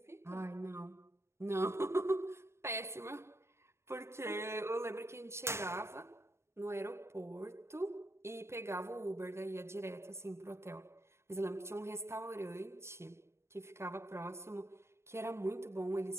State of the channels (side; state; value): left; late; 0.13 ms